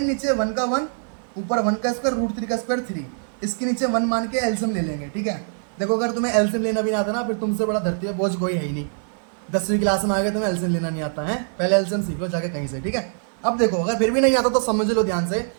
नीचे 1 का 1, ऊपर 1 का स्क्वायर, √3 का स्क्वायर 3, इसके नीचे 1 मान के एलसीएम ले लेंगे, ठीक है। देखो अगर तुम्हें एलसीएम लेना भी नहीं आता ना, फिर तुमसे बड़ा धरती पे बोझ कोई है ही नहीं। 10वीं क्लास में आ गए तुम्हें एलसीएम लेना नहीं आता है, पहले एलसीएम सीख लो जाके कहीं से, ठीक है। अब देखो अगर फिर भी नहीं आता तो समझ लो ध्यान से,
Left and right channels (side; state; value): left; silent; digital silence